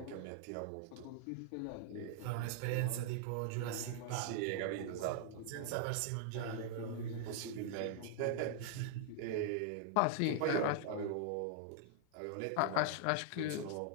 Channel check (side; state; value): both; different; correlation -0.01